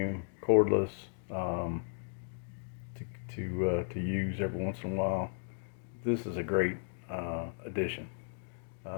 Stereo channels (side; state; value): right; silent; digital silence